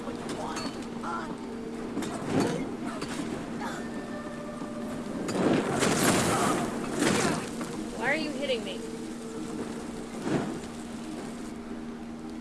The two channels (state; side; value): identical; both; correlation 1.00